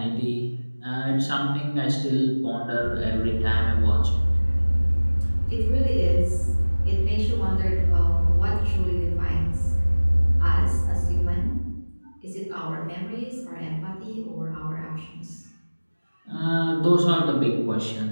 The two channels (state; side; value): inverted; both; correlation -1.00